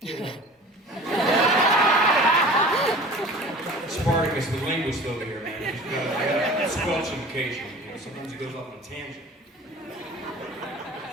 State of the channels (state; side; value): normal; both; correlation 0.42